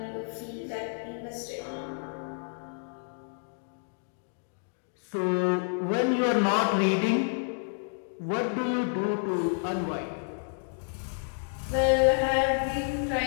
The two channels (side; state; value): right; silent; 58 dB below the other